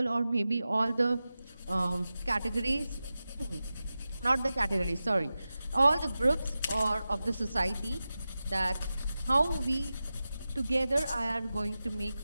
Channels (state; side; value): inverted; both; correlation -0.94